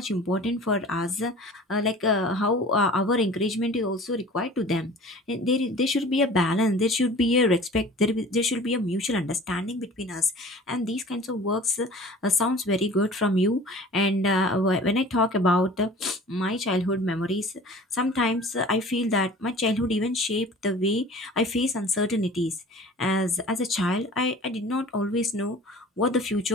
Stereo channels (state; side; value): normal; both; correlation 0.43